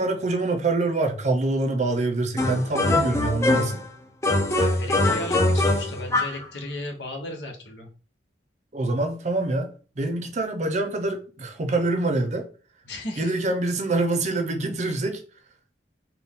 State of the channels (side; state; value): both; normal; correlation 0.56